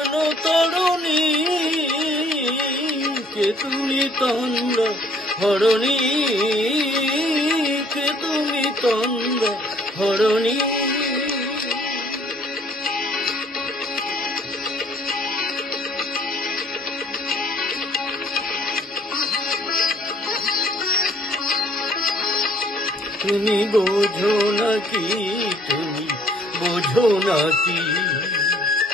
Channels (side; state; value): both; normal; correlation 0.59